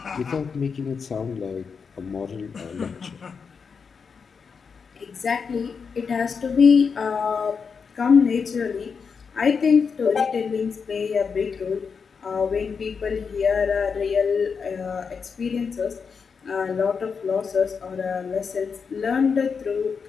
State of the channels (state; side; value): quieter; right; 5.7 dB